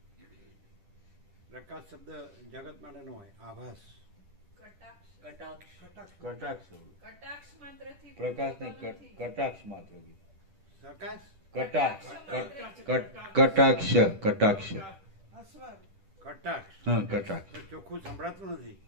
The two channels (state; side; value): late; left; 10 ms